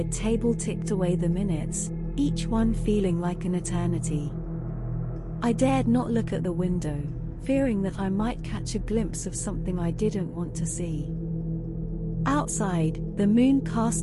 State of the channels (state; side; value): identical; both; correlation 1.00